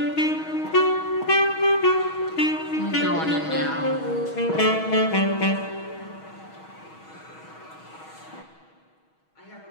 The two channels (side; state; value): right; late; 6.3 ms